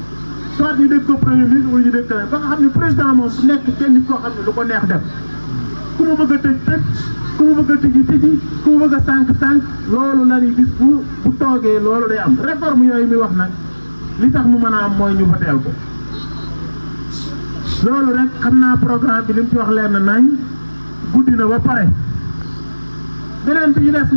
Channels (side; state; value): both; inverted; correlation -1.00